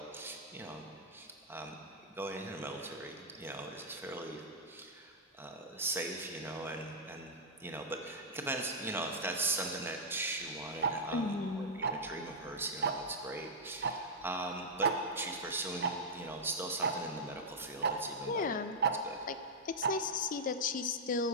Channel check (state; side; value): normal; both; correlation -0.07